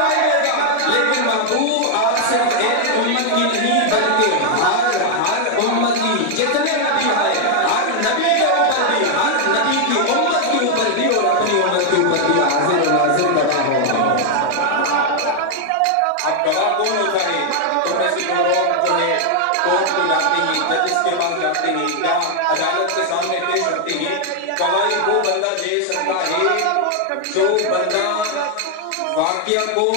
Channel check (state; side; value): different; both; correlation 0.00